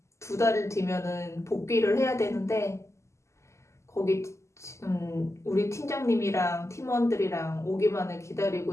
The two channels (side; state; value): right; late; 0.13 ms